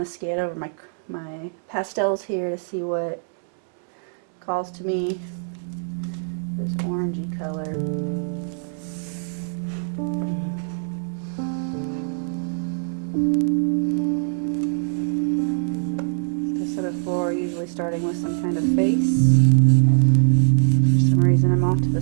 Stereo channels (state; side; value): silent; left; digital silence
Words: to scan over my pastels here to see what calls to me. This orangey color. As I said before, usually starting with some kind of face. For some reason I'm off to the